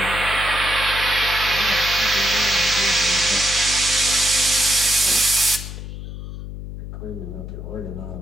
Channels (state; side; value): noise; left; hum, 10 dB below the sound